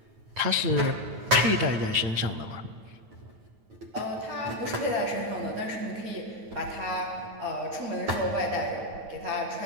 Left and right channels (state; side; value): late; left; 9.2 ms